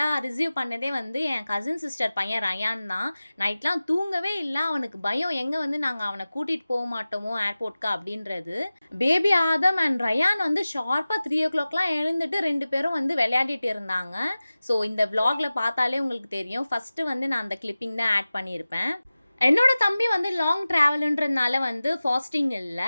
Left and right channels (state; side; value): inverted; both; correlation -0.97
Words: ரிசீவ் பண்ணதே வந்து என் கசின் சிஸ்டர் பையன் ரயான் தான். நைட்லாம் தூங்கவே இல்ல. அவனுக்கு பயம் எங்க வந்து நாங்க அவன கூட்டிட்டு போ மாட்டோமோ ஏர்போர்ட்க்கு அப்படின்றது. பேபி ஆதம் அண்ட் ரயான் வந்து ஷார்ப்பா 3:00லாம் எழுந்துட்டு 2 பேரும் வந்து விளையாடிட்டு இருந்தாங்க. ஸோ இந்த விளாக்ல பார்த்தாலே உங்களுக்கு தெரியும். ஃபர்ஸ்ட்டு வந்து நான் அந்த கிளிப்பிங் தான் ஆட் பண்ணியிருப்பேன். என்னோட தம்பி வந்து லாங் ட்ராவலுன்றதுனால வந்து ஃபாஸ்டிங் இல்ல.